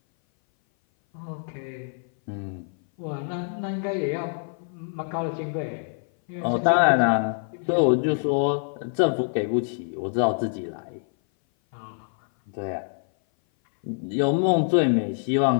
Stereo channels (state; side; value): silent; right; 58 dB below the other